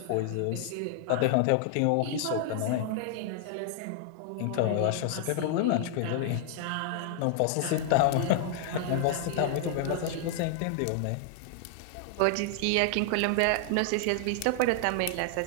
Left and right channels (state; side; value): different; both; correlation -0.01